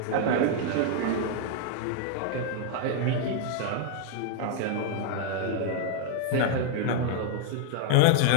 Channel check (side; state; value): both; different; correlation 0.00